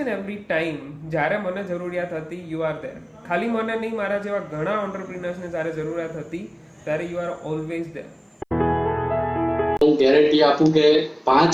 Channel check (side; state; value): both; identical; correlation 1.00